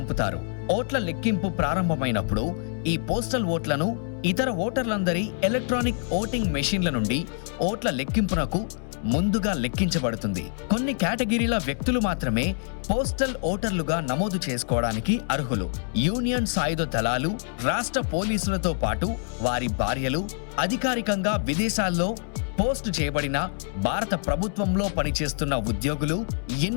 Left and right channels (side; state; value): right; silent; 61 dB below the other